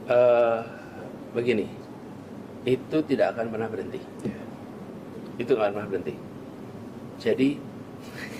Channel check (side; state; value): both; identical; correlation 1.00